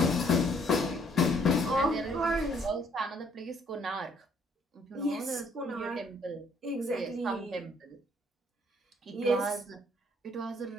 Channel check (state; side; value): normal; both; correlation 0.64